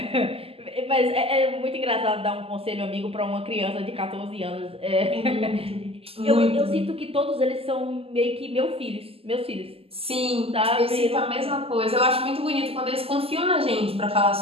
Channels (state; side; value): late; left; 0.28 ms